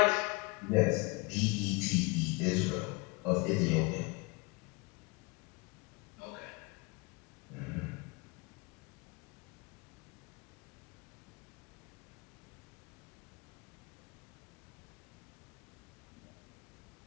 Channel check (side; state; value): right; quieter; 27.4 dB